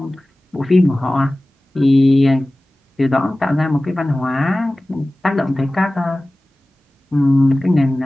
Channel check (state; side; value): normal; both; correlation 0.97